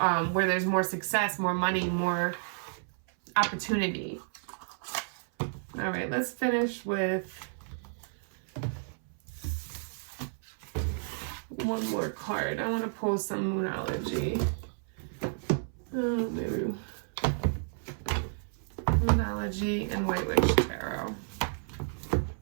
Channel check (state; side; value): silent; left; 57 dB below the other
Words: where there's more success, more money, more opportunity. All right, let's finish with one more card. I want to pull some Moonology. Maybe Moonology and White Witch Tarot.